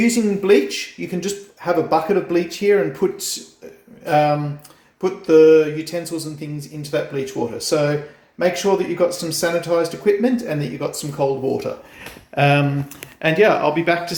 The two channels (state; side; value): identical; both; correlation 1.00